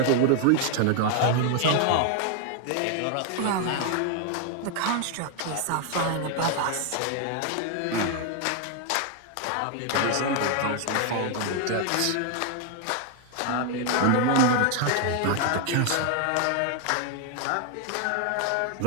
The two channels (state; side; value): different; both; correlation 0.00